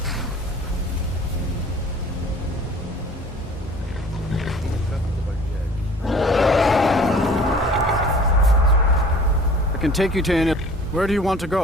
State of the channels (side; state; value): both; normal; correlation 0.48